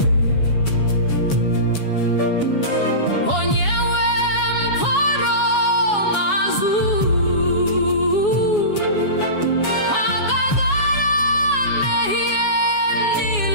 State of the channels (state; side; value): late; right; 7.2 ms